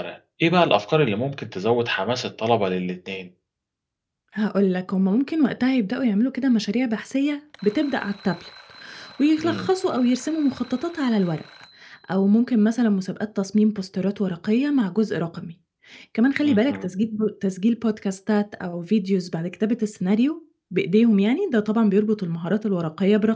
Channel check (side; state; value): both; identical; correlation 1.00